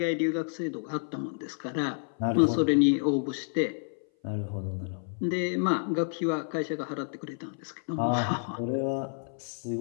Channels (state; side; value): silent; right; 57 dB below the other